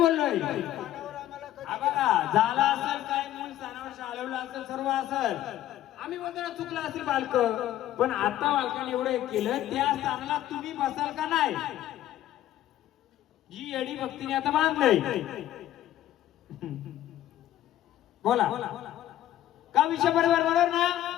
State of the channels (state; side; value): quieter; right; 13.1 dB